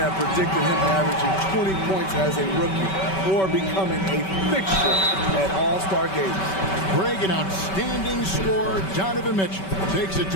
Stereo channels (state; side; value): late; right; 5.2 ms